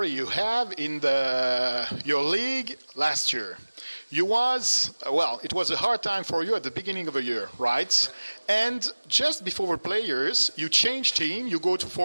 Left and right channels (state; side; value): inverted; both; correlation -1.00